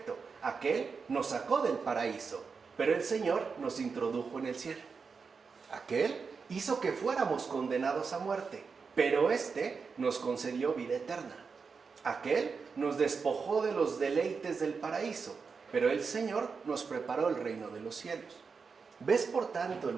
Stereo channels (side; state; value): left; quieter; 5.2 dB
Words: aquel nos sacó del paraíso, pero el Señor nos introdujo en el cielo. Aquel hizo que fuéramos condenados a muerte, pero éste nos concedió vida eterna. Aquel nos despojó de los deleites del paraíso, pero el Señor nos preparó el reino de los cielos. ¿Ves por tanto el